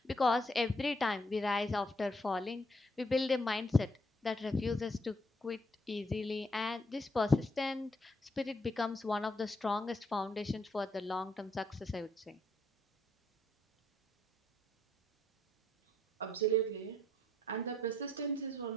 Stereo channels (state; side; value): normal; both; correlation 0.73